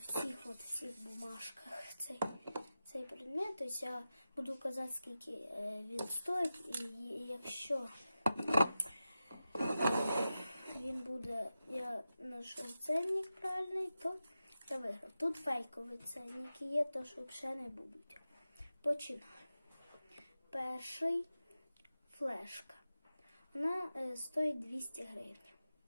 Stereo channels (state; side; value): inverted; both; correlation -0.93